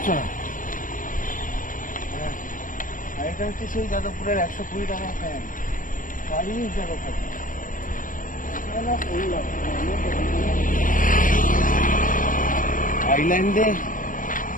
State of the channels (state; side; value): late; right; 0.39 ms